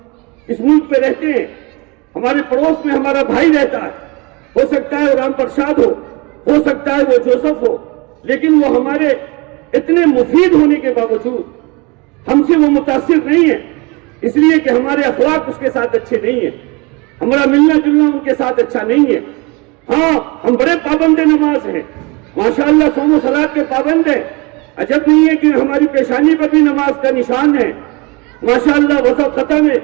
اس ملک پہ رہتے ہیں، ہمارے پڑوس میں ہمارا بھائی رہتا ہے، ہو سکتا ہے وہ رام پرساد ہو سکتا ہے وہ جوسف ہو، لیکن وہ ہمارے اتنے مفید ہونے کے باوجود ہم سے وہ متاثر نہیں ہے، اس لیے کہ ہمارے اخلاق اس کے ساتھ اچھے نہیں ہیں، ہمارا ملنا جلنا ان کے ساتھ اچھا نہیں ہے۔ ہاں ہم بڑے پابند نماز ہیں، ماشاءاللہ صوم و صلاۃ کے پابند ہیں، عجب نہیں ہے کہ ہماری پیشانی پر بھی نماز کا نشان ہے، ماشاءاللہ وضع خطا میں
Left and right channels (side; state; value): left; quieter; 27.2 dB